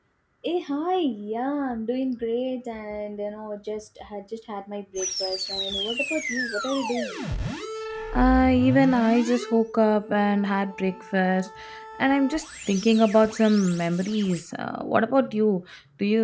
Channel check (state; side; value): identical; both; correlation 1.00